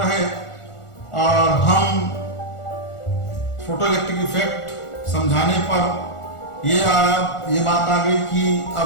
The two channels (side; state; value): right; late; 1.4 ms